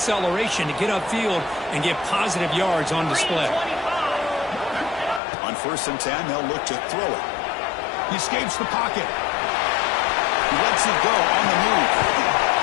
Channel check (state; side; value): drops out; right; at 5.2 s